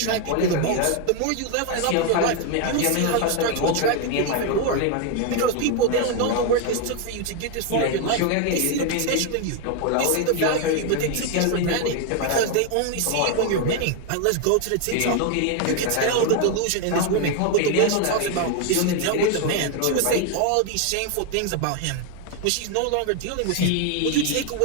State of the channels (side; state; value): both; different; correlation 0.01